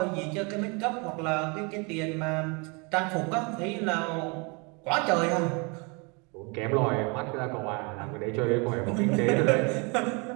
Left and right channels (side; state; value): left; quieter; 31.1 dB